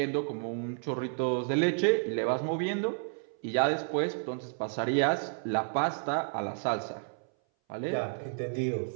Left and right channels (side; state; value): left; silent; 57 dB below the other